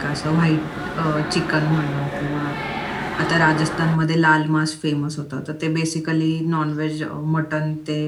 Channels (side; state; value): both; identical; correlation 1.00